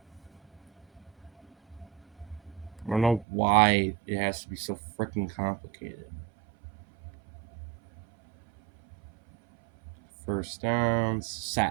I don't know why it has to be so freaking complicated. First downs,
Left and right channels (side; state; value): left; drops out; at 3.2 s